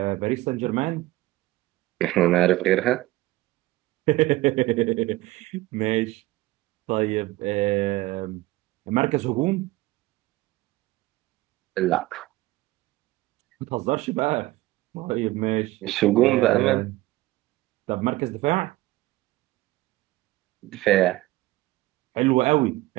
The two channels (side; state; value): left; quieter; 18.4 dB